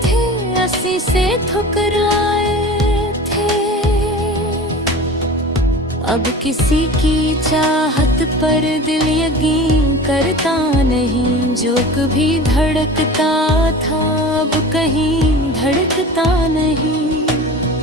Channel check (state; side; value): normal; both; correlation 0.36